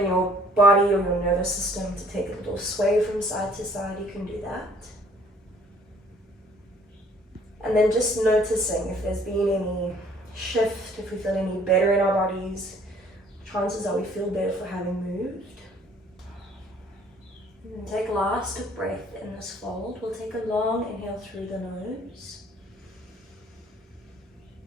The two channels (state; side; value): normal; both; correlation 0.58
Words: your body or your nervous system to take a little sway from side to side, you can do that. And then just noticing if there's been any shift, if we feel any better in our bodies. Chances are we feel better for having moved. And take a last breath in this fold. We'll take a long inhale through the nose.